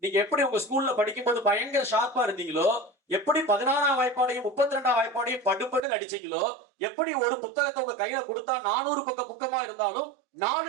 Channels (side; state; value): left; drops out; at 5.8 s